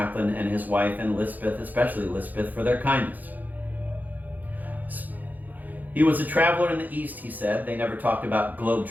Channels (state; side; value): late; left; 0.083 ms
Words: and his wife and Lispeth, especially Lispeth, for their kindness. He was a traveler in the East, he said. They never talked about